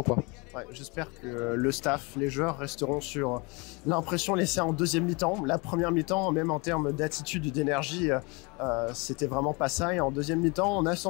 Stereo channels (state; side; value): quieter; right; 28.8 dB